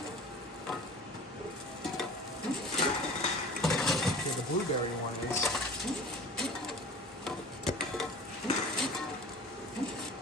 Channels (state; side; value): normal; both; correlation 0.40